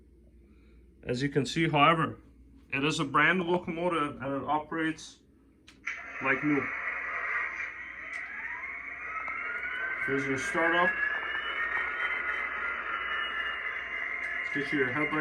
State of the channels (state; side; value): identical; both; correlation 1.00